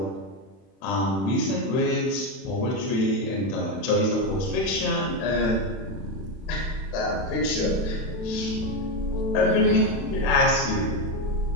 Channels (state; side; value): late; right; 31 ms